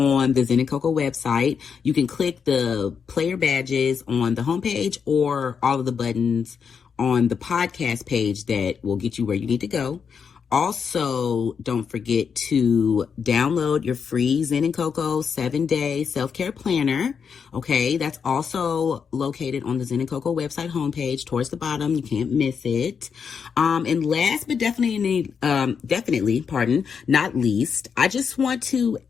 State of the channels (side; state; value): right; quieter; 6.5 dB